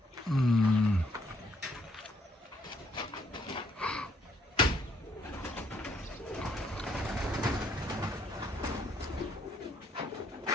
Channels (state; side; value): normal; both; correlation 0.68